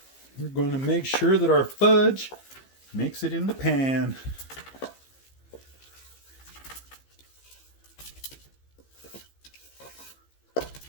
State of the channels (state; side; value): late; right; 15 ms